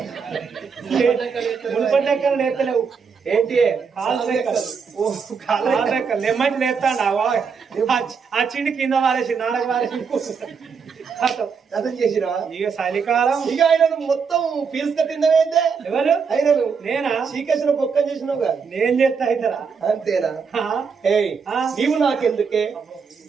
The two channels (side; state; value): left; quieter; 5.8 dB